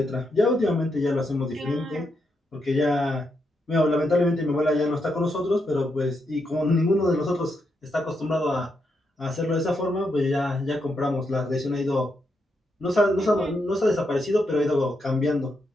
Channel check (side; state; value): both; normal; correlation 0.82